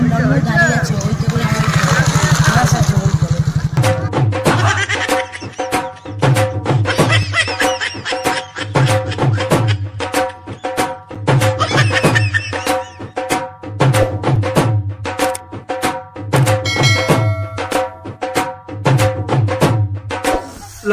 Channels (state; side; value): identical; both; correlation 1.00